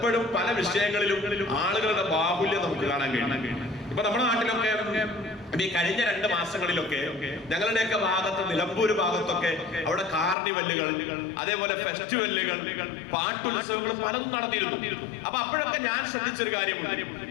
പല വിഷയങ്ങളിലും ആളുകളുടെ ബാഹുല്യം നമുക്ക് കാണാൻ കഴിയും. ഇപ്പൊ നമ്മുടെ നാട്ടിലൊക്കെ ഈ കഴിഞ്ഞ 2 മാസങ്ങളിലൊക്കെ ഞങ്ങളുടെയൊക്കെ ഭാഗത്ത്, നിലമ്പൂര് ഭാഗത്തൊക്കെ അവിടെ കാർണിവല്ലുകൾ, അതേപോലെ ഫെസ്റ്റിവലുകൾ, പാട്ടുത്സവങ്ങൾ പലതും നടന്നിരുന്നു. അപ്പൊ അപ്പോഴൊക്കെ ഞാൻ ശ്രദ്ധിച്ചൊരു കാര്യമുണ്ട്.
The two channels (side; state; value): right; drops out; at 10.4 s